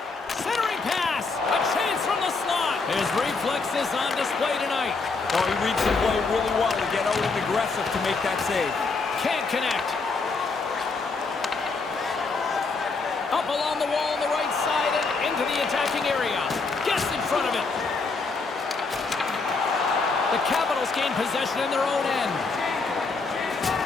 Centering pass. A chance from the slot. His reflexes on display tonight. Oh, he reads the play really well to get out and aggressive to make that save. Can't connect. Up along the wall on the right side and into the attacking area. Gets in front of it. The Capitals gain possession in their own end.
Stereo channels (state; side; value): quieter; right; 4.1 dB